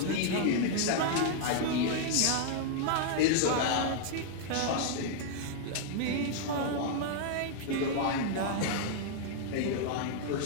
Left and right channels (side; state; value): both; different; correlation -0.01